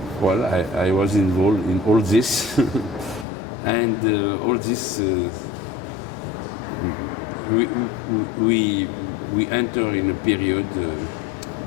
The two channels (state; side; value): drops out; right; at 3.2 s